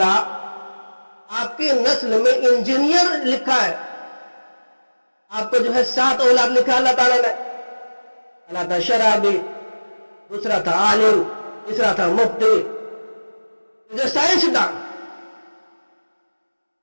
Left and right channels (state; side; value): inverted; both; correlation -1.00